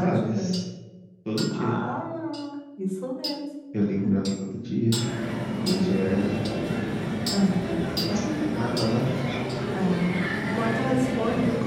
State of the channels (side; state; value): both; identical; correlation 1.00